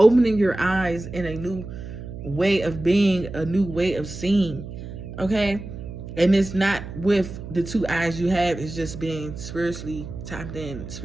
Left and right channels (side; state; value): right; noise; hum, 10 dB below the sound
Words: your eyes in a new way of being, a new way of seeing. Okay? And it's not with the two eyes you have. It's just being spiritually tapped in,